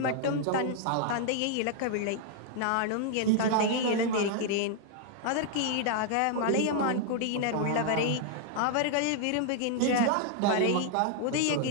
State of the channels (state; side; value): different; both; correlation 0.00